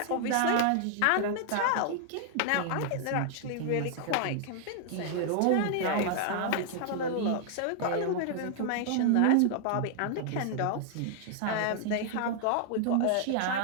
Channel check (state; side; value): different; both; correlation 0.00